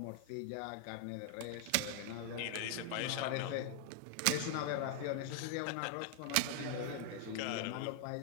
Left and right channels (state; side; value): different; both; correlation 0.00